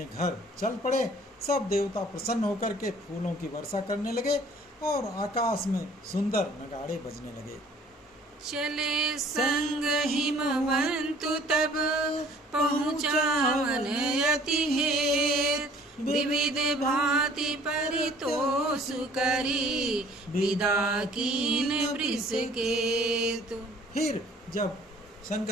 घर चल पड़े। सब देवता प्रसन्न होकर के फूलों की वर्षा करने लगे और आकाश में सुंदर नगाड़े बजने लगे। चले संग हिमवंतु तब, पहुँचावन अति हेत। विविध भांति परितोष करी, विदा कीन वृषकेतु। फिर जब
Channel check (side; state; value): both; normal; correlation 0.54